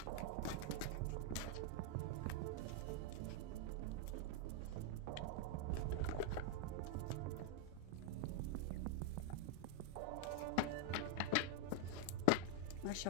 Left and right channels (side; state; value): both; different; correlation 0.00